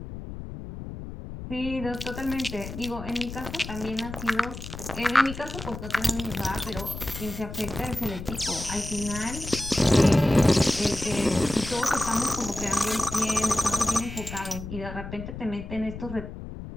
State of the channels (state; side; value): noise; left; rumble, 10 dB below the sound